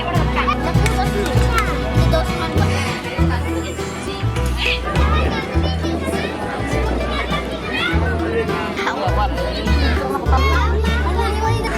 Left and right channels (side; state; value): both; identical; correlation 1.00